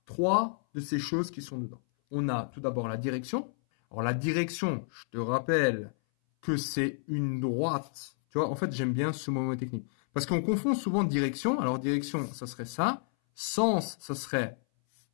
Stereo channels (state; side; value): silent; right; 57 dB below the other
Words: trois de ces choses qui sont dedans. On a tout d'abord la direction. Alors la direction, je te rappelle que c'est une droite. Tu vois, en fait, j'aime bien ce mot technique. Parce qu'on confond souvent direction. Alors direction, ça serait ça. Sens, ça serait